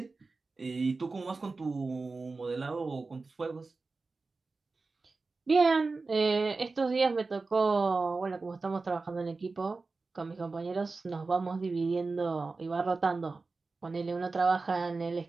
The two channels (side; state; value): left; quieter; 3.9 dB